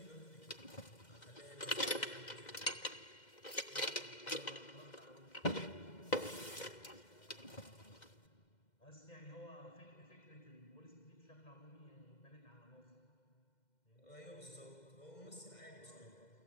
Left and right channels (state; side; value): late; right; 2.1 ms